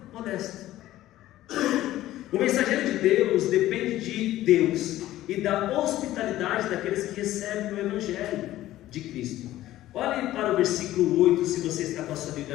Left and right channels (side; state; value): right; quieter; 14.7 dB